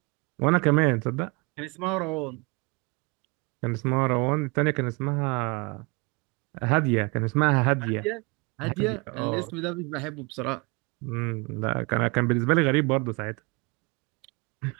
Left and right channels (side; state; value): left; quieter; 28.6 dB